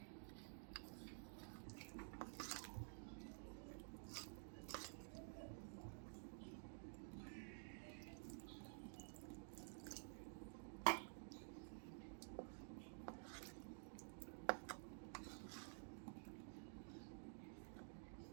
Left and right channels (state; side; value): silent; left; digital silence